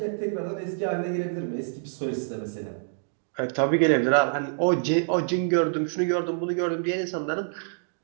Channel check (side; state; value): left; silent; digital silence